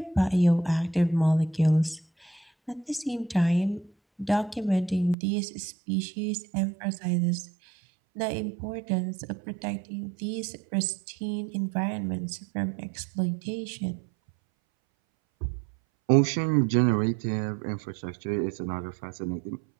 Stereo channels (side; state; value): left; drops out; at 5.2 s